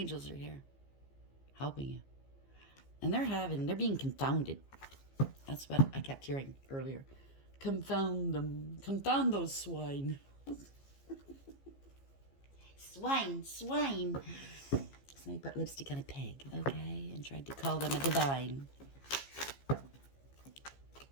are here, helping you. And they're being confounded. That's what I kept hearing earlier. Confound them. Confound those swine. Swine, swine. Somebody put lipstick on a pig, okay? And tried to call them a divine.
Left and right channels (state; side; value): late; right; 15 ms